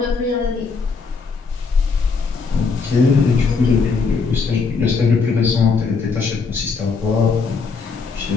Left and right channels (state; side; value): quieter; right; 4.8 dB